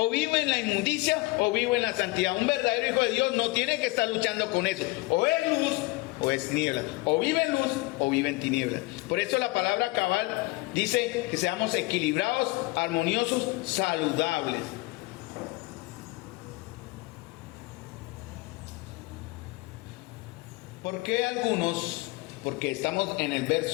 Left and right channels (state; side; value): quieter; right; 23.0 dB